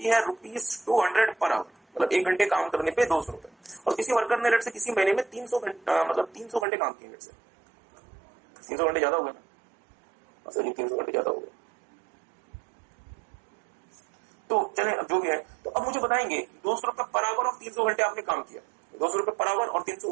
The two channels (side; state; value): left; drops out; at 6.7 s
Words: है ₹200 पर आवर, मतलब 1 घंटे काम करने पे 200 रुपए। और किसी वर्कर ने लेट से किसी महीने में 300 घंटे काम किए, लेट से 300 घंटे ज्यादा हो गए ना सर जी, 300 घंटे ज्यादा हो गए। तो चले अब जो भी है, तो अब मुझे बताएंगे 200 रुपए पर आवर और 300 घंटे आपने काम किया, 200 रुपए पर आवर और 300